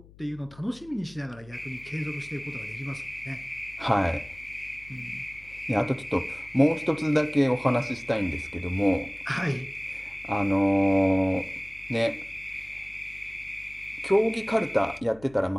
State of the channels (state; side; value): noise; left; hum, 23 dB below the sound